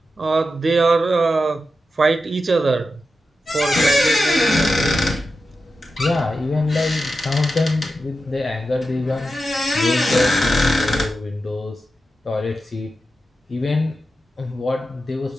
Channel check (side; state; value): both; normal; correlation 0.90